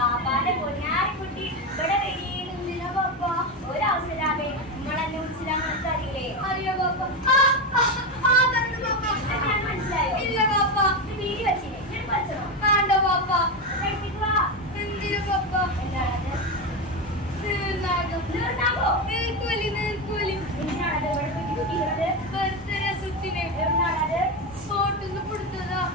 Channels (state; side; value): normal; both; correlation 0.14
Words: പൊന്നാരിക്കുട്ടി ഇവിടെ വെടിയിലുന്നില്ല ബാപ്പ. ഒരവസരാമേ നിങ്ങളെന്നെ വിളിച്ചില്ലാന്ന് അറിയില്ലേ? അറിയോ ബാപ്പ? മനസ്സിലായോ? ഇല്ല ബാപ്പ. വീടി വെച്ചില്ലേ? ഞാൻ പഠിച്ചോ? വേണ്ട ബാപ്പ. കഴിപ്പിക്കുക. എന്തിനു ബാപ്പ? എന്താണത്? നീർനാഗോ? നീർക്കോലി, നീർക്കോലി. എന്തിനാണത് ഇവിടെ കുട്ടിക്കുന്നത്? ബർത്ത്ഡേ സുറ്റിനെ എവിടുന്നാണത്? ഫോട്ടോന്ന് കൊടുത്തതാ.